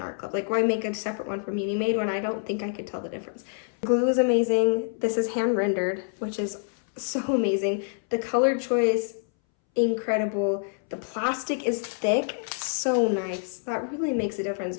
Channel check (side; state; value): right; silent; 60 dB below the other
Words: Art Club. Like, why make a separate one for Munimade when I don't think I could tell the difference? Glue is amazing. This is hand rendered, which is so amazing. The color choice, incredible. The plastic is thick, so nice. That really makes a difference